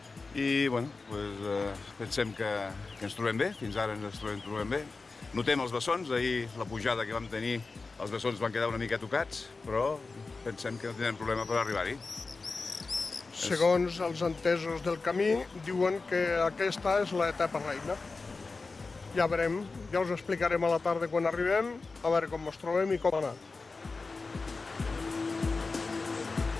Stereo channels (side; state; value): right; quieter; 4.0 dB